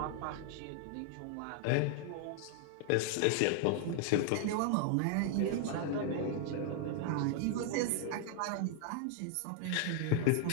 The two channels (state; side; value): different; both; correlation 0.00